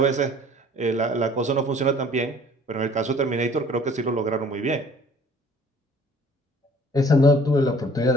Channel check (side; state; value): both; normal; correlation 0.53